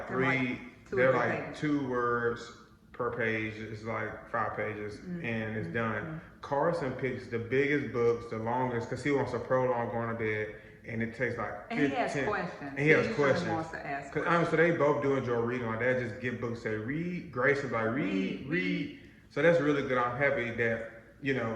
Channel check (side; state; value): both; identical; correlation 1.00